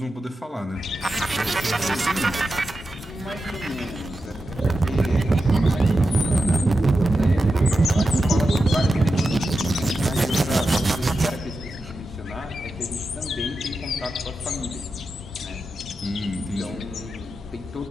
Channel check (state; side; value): normal; both; correlation 0.90